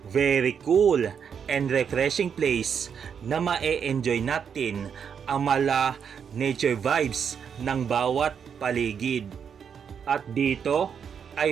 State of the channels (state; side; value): quieter; left; 7.3 dB